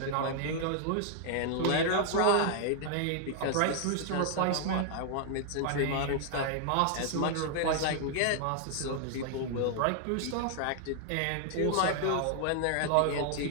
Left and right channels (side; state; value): both; different; correlation -0.01